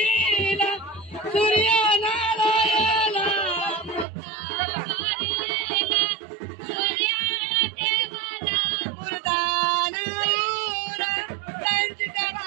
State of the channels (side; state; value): left; drops out; at 4.0 s